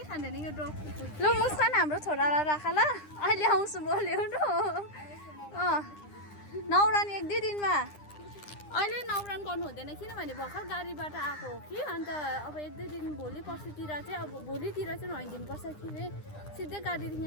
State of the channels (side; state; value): right; late; 9.9 ms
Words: खाँदैन यो डग। ल मुस्कान हाम्रो छोरालाई राख ल, अहिले आउँछु म ल्याउनु। नौरान 1-2 दिनमा। अहिले नौरान गर्नु हुँदैन, किनभने भर्खर गाडीबाट आएको हो कि। अन्त अब 1-2 दिन भोलि पर्सितिर चाहिँ, अब भोलितिर चाहिँ नुहाइदिनुपर्छ कि सिधै गाडीदेखि